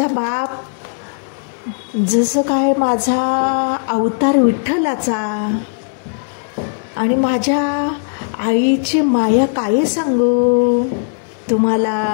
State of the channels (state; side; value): silent; right; digital silence